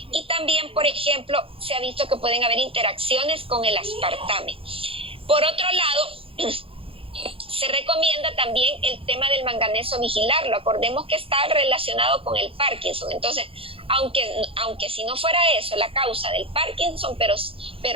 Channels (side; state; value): left; late; 0.27 ms